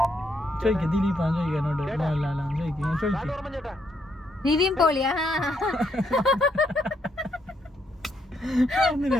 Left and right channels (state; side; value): normal; both; correlation 0.76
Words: ചോദിക്ക ദിലീപാൻ ചോദിക്കാനോട് മോഹൻലാലാണ് ചോദിക്കും ചോദിക്കും നിവിൻ പോളിയാ